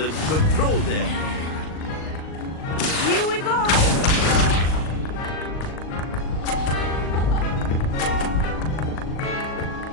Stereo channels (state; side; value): late; right; 38 ms